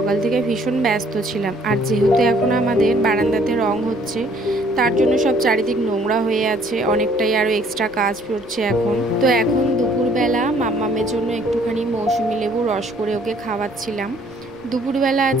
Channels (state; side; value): noise; right; rumble, 26 dB below the sound